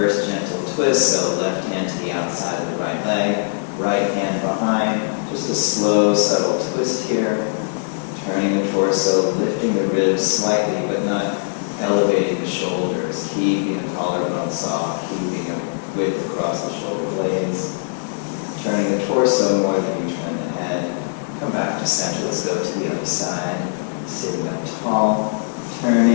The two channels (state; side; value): silent; right; 65 dB below the other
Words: gentle twist. So left hand to the outside of the right leg, right hand behind. Just a slow, subtle twist here. Turning the torso, lifting the ribs slightly, but not elevating the shoulders. Keeping the collarbone soft, keeping a width across the shoulder blades. Turning the torso more than you turn the head. Come back to center. Let's go to the other side. Sitting up tall.